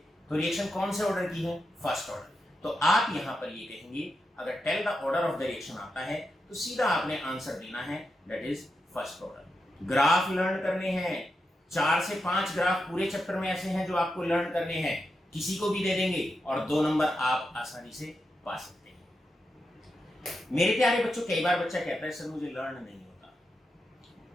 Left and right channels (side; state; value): both; normal; correlation 0.87